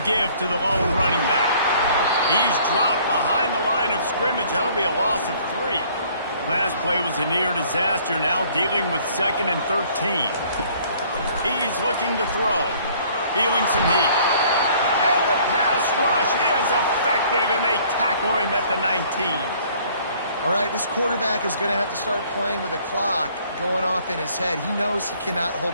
give to the lone running back. He's dropped behind the line of scrimmage. That'll be a loss of 3. Last play was a near disaster, now dealing with 2nd and 13. He's looking to throw. Feeling some heat. And the pass rush is effective, and they tackle him at the 19. All right, this quarterback is going to have to start playing with a clock going off in his head. He knows he cannot hold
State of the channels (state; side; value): inverted; both; correlation -0.58